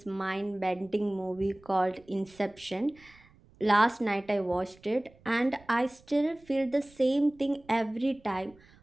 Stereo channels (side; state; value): right; noise; rumble, 27 dB below the sound